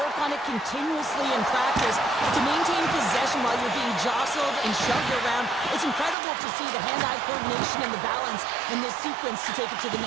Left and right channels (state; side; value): drops out; left; at 6.2 s